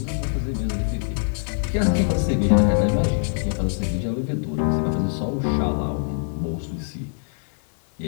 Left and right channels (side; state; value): right; silent; digital silence